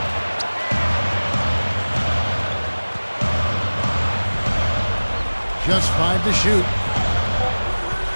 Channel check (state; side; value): inverted; both; correlation -1.00